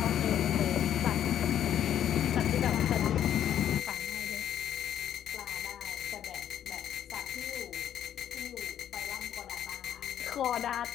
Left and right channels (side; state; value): right; quieter; 10.4 dB